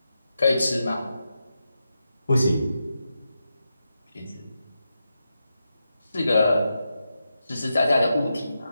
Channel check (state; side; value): inverted; both; correlation -0.88